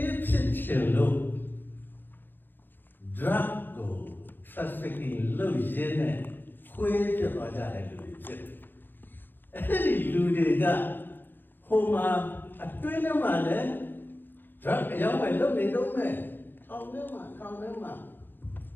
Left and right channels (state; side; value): late; right; 0.094 ms